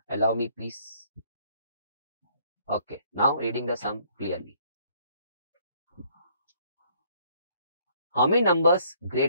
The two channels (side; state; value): both; inverted; correlation -0.64